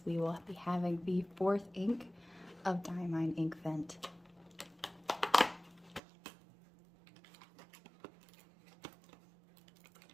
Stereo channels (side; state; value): left; drops out; at 6.0 s